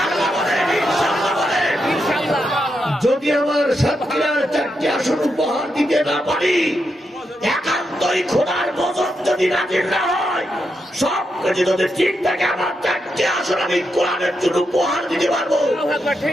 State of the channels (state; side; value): normal; both; correlation 0.84